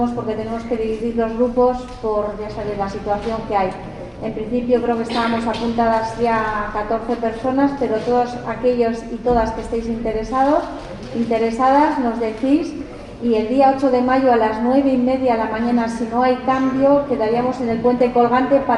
porque tenemos que dividir los grupos por, ya sabéis, la situación que hay. En principio creo que estábamos apuntadas ya 14 personas, pero todos aquellos y todas que estéis interesadas, nos decís. Y el día 8 de mayo a las 9:30 de la mañana, si no hay cambio, quedaríamos en el puente colgante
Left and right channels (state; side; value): identical; both; correlation 1.00